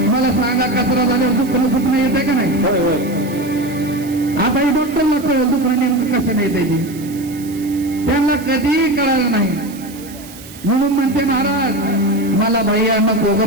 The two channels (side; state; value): right; noise; hiss, 18 dB below the sound